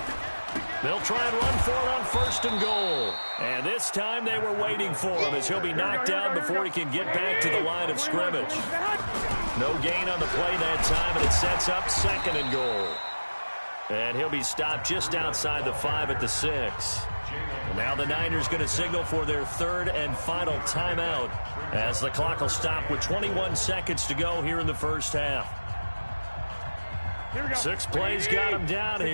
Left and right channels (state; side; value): inverted; both; correlation -1.00